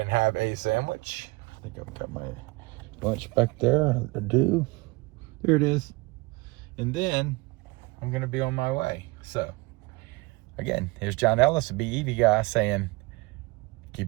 have a sandwich. I think I've got my lunch back there. I do. Here it is. And then I'm going to be on my way. So again, here's John Ellis, the BEV guy, saying,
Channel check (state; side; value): quieter; left; 24.6 dB